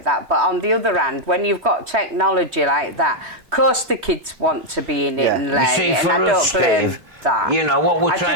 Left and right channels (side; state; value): left; late; 3.1 ms